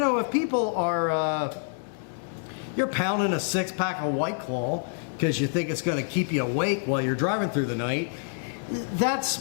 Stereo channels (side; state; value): right; silent; digital silence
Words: if people are, you're pounding a 6-pack of White Claw because you think it's going to keep you awake while you're driving through the night,